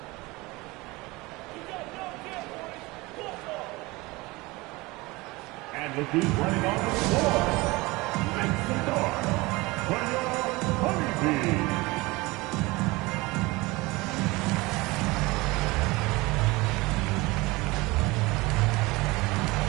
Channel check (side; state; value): left; quieter; 22.6 dB